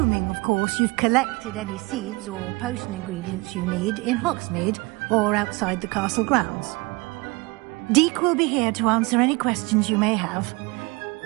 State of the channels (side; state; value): left; quieter; 25.5 dB